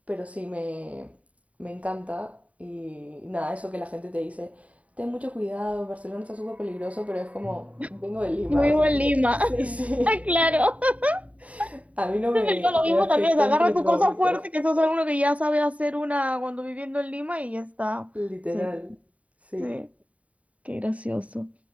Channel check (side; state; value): left; late; 0.067 ms